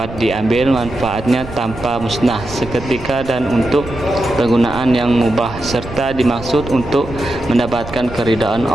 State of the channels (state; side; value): noise; right; rumble, 13 dB below the sound